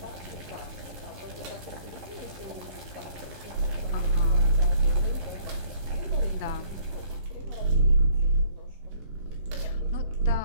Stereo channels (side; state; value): left; late; 11 ms